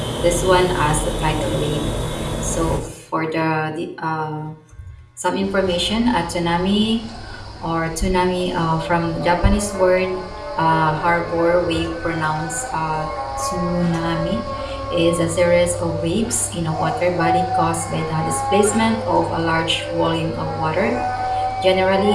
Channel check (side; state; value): both; identical; correlation 1.00